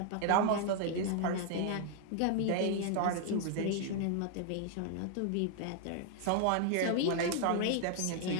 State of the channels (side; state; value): both; different; correlation 0.00